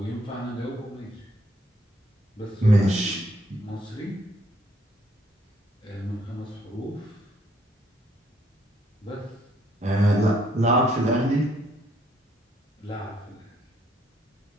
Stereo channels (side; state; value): both; normal; correlation 0.68